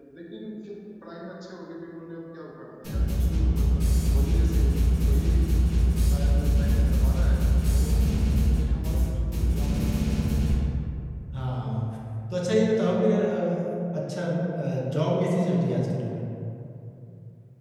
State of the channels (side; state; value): both; identical; correlation 1.00